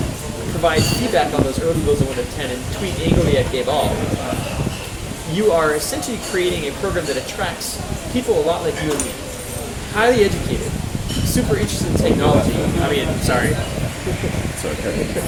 provide feedback on those early builds of Windows 10, and tweet angrily at Gabe All, you are essentially creating a program that attracts people a lot like you and me. Highly educated, super interested in technology. Highly educated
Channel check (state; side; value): identical; both; correlation 1.00